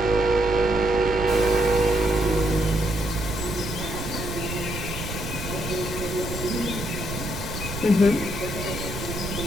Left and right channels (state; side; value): noise; right; rumble, 7 dB below the sound